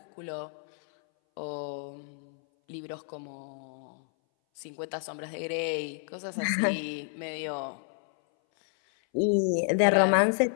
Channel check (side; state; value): right; silent; 58 dB below the other